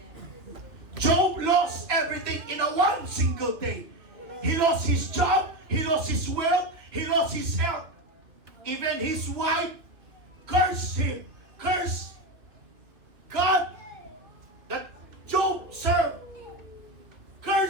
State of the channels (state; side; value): late; left; 2.9 ms